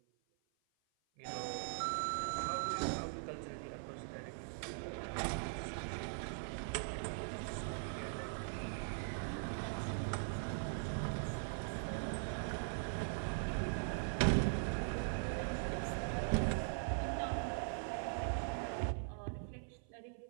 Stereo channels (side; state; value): left; silent; 50 dB below the other